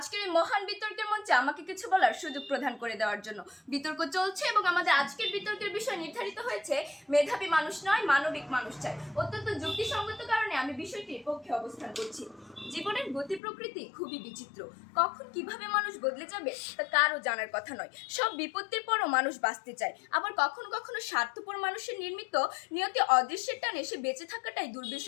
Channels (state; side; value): drops out; right; at 13.4 s